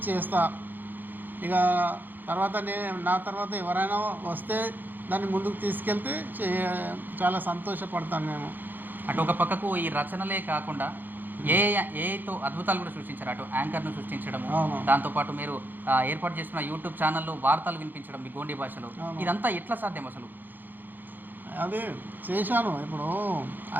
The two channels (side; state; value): left; late; 0.089 ms